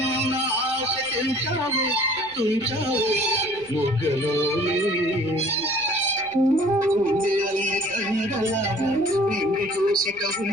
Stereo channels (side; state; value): right; noise; rumble, 26 dB below the sound